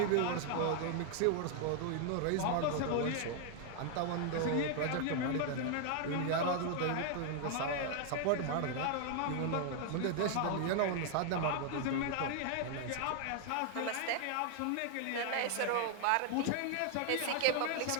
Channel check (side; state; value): both; different; correlation 0.00